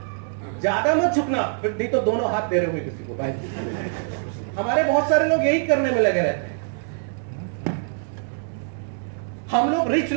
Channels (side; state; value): left; silent; digital silence